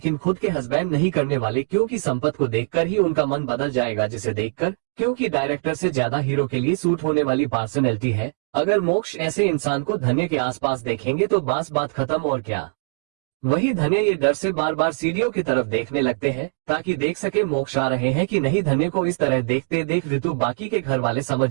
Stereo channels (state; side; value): silent; left; digital silence